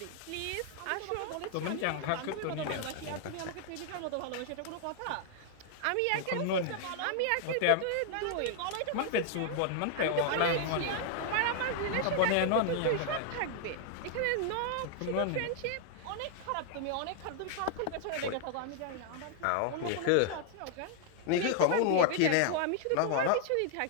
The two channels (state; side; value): different; both; correlation 0.00